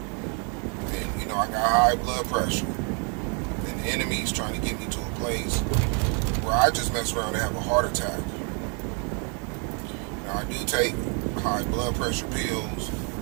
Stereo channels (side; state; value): left; quieter; 37.5 dB